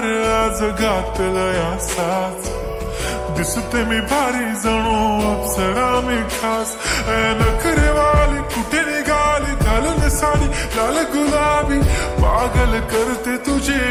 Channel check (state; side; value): identical; both; correlation 1.00